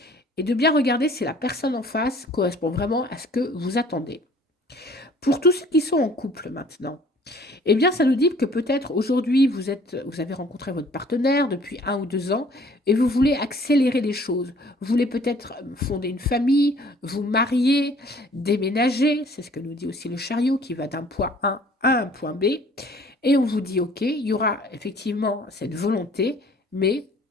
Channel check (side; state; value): both; normal; correlation 0.54